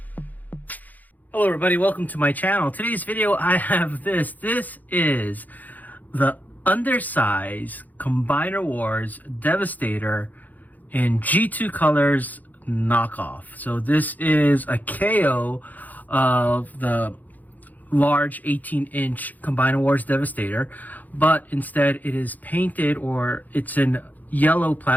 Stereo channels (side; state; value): right; late; 0.082 ms